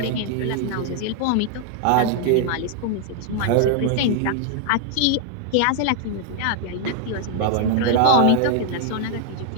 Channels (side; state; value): both; different; correlation 0.00